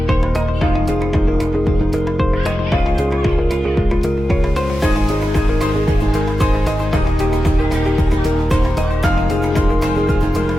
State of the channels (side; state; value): both; normal; correlation 0.92